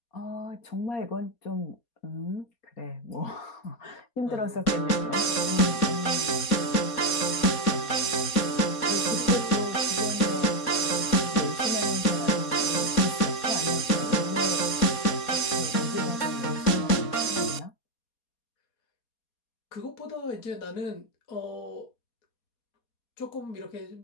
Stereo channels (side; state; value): right; late; 4.2 ms